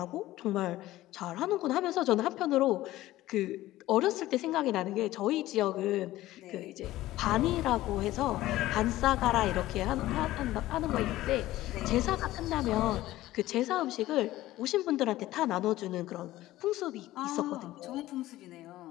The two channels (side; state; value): right; quieter; 16.0 dB